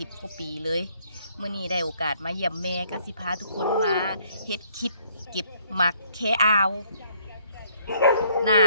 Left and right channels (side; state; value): both; inverted; correlation -0.65